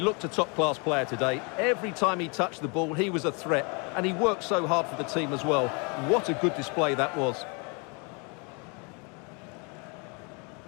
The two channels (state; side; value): quieter; right; 33.1 dB